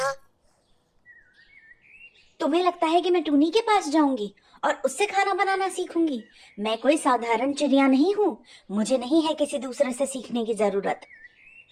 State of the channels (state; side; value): identical; both; correlation 1.00